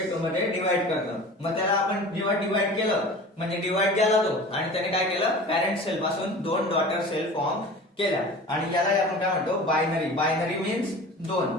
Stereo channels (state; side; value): normal; both; correlation 0.38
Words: मध्ये डिवाइड करतं। मग त्याला आपण जेव्हा डिवाइड केलं, म्हणजे डिवाइड केला तो, आणि त्याने काय केलं, पॅरेंट सेल पासून दोन डॉटर सेल फॉर्म केल्या, आणि याला आपण काय म्हणतो, बायनरी। बायनरी मीन्स दोन,